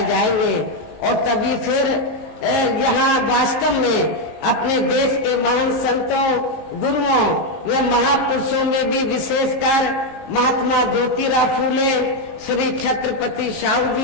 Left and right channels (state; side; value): late; right; 19 ms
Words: जाएंगे और तभी फिर यहाँ वास्तव में अपने देश के महान संतों, गुरुओं व महापुरुषों में भी विशेषकर महात्मा ज्योतिराव फूले, श्री छत्रपति शाहू